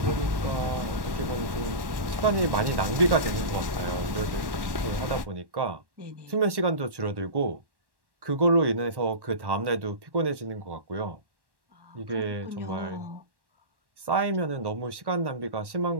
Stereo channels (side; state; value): left; late; 1.1 ms